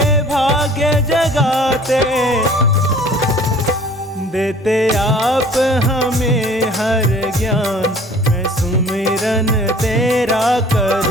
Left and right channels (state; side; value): normal; both; correlation 0.50